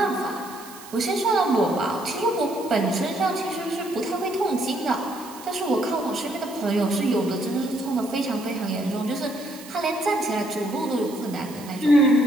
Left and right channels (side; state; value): right; noise; hiss, 17 dB below the sound